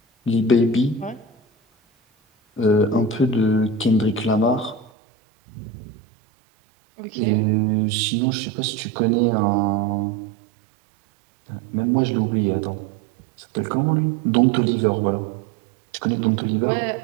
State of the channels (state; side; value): drops out; left; at 4.9 s